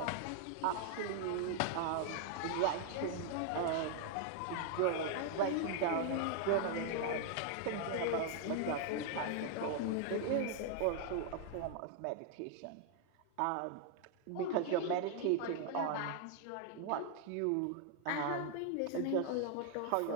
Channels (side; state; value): both; different; correlation 0.00